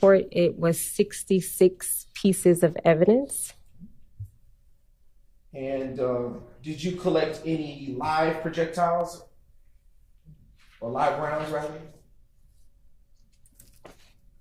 it was 66 pieces of evidence. And did you collect any live projectiles? Or live rounds, rather?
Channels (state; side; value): identical; both; correlation 1.00